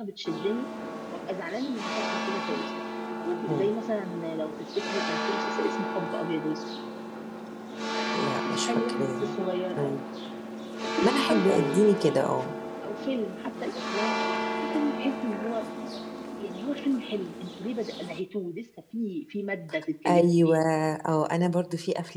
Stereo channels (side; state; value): both; identical; correlation 1.00